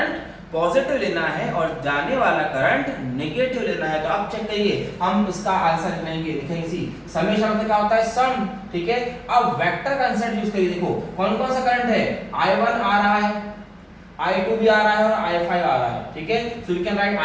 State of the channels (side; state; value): both; identical; correlation 1.00